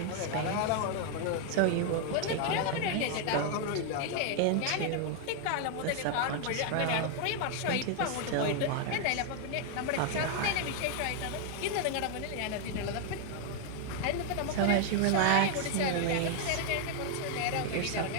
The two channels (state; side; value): different; both; correlation 0.00